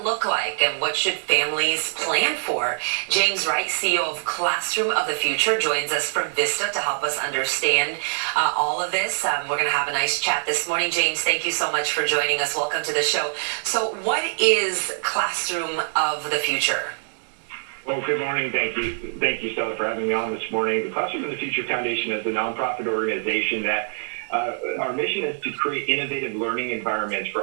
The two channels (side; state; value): left; silent; digital silence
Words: look like, and what should families plan for? James Wright, CEO of Classroom of the Future, joins us from Vista to help us understand all of this. We're going to have a nice chat this morning. James, thank you so much for joining us. Welcome to the show. So what is Classroom of the Future? Well, good morning. Thank you, Stella, for having me on this morning. The Classroom of the Future Foundation is a nonprofit organization that our mission is to create innovative learning environments for